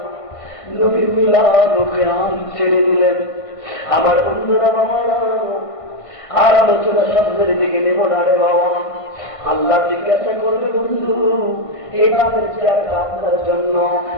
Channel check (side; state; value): right; late; 1.5 ms